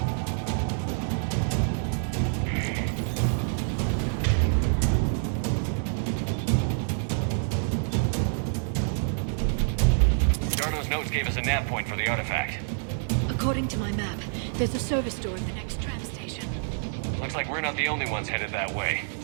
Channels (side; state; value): left; silent; digital silence